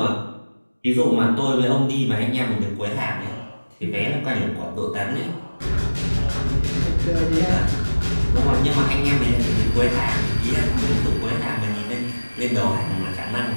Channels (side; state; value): both; inverted; correlation -1.00